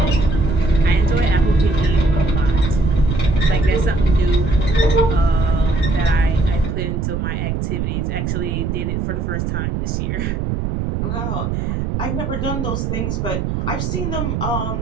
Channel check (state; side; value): noise; right; rumble, 1 dB below the sound